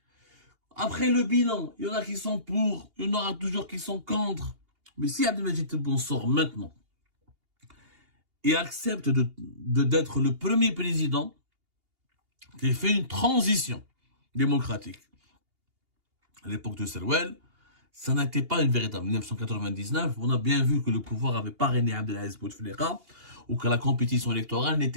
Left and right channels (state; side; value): late; left; 2.8 ms